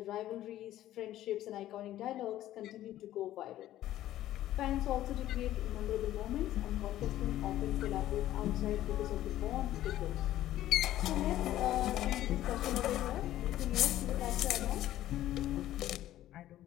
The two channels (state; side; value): quieter; right; 13.6 dB